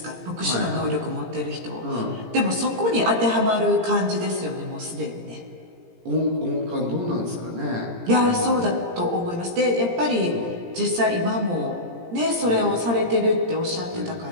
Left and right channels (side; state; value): left; late; 17 ms